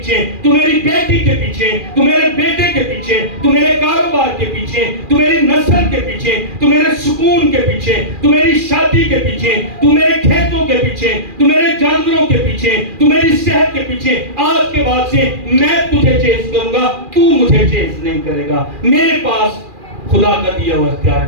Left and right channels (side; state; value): left; late; 2.4 ms